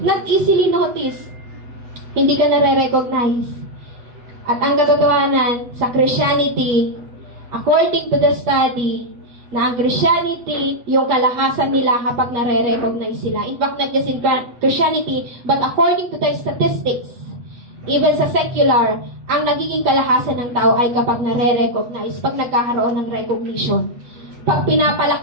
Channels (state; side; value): late; left; 8.5 ms